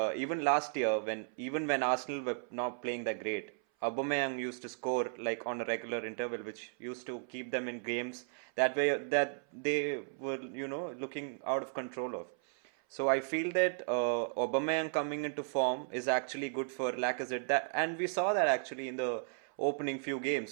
even last year, when Arsenal were not playing that great, Aubameyang used to score like on a regular interval, which used to keep them in games that they were looking out of control of. So I feel that Aubameyang coming into form is actually good for Lacazette. And we saw that actually in the opening few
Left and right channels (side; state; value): left; silent; 54 dB below the other